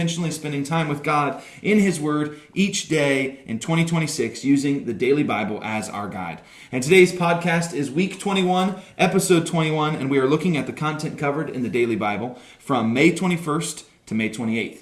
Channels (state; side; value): identical; both; correlation 1.00